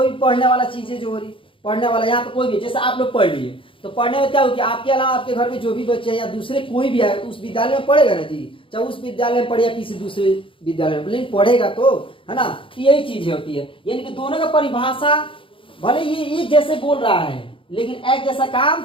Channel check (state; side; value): late; right; 0.25 ms